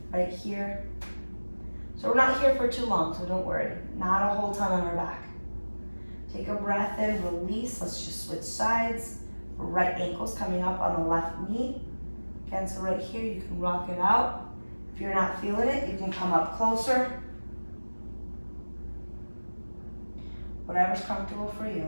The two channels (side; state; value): both; inverted; correlation -1.00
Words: right here. So we're not here for too long, so don't worry. Not a whole ton on our back. Take a breath in, release. Let's just switch sides. Right ankle's coming up on the left knee. Again, so right here, you can rock it out. If you're not feeling it, you can come up closer. Whatever's comfortable for you.